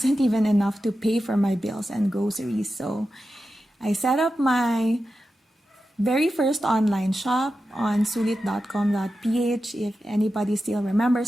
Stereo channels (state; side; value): normal; both; correlation 0.91